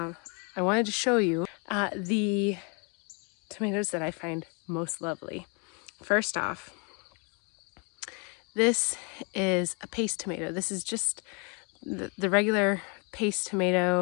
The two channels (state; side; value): quieter; right; 34.4 dB